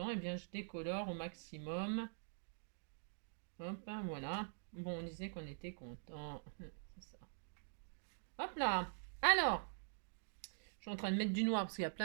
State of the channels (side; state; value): left; silent; digital silence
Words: eh bien je décolore au maximum. Hop, hein, voilà. Bon, on disait qu'on était content. C'est ça. Hop là. Alors, je suis en train de mettre du noir parce qu'il y a